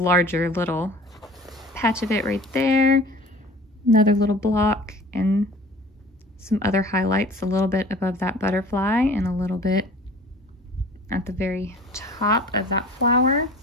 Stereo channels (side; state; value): both; normal; correlation 0.44